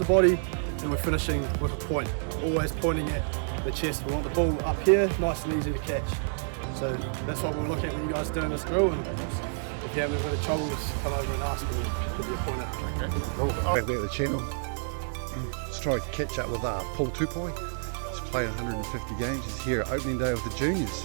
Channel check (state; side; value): silent; left; digital silence